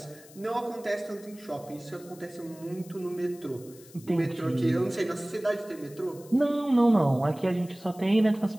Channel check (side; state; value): left; noise; hiss, 22 dB below the sound